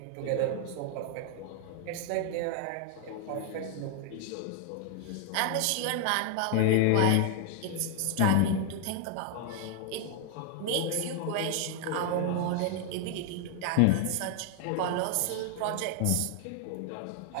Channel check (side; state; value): both; different; correlation 0.00